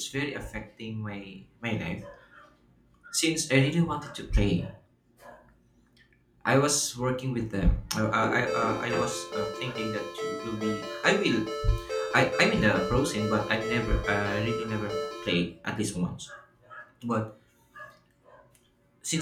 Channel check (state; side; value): identical; both; correlation 1.00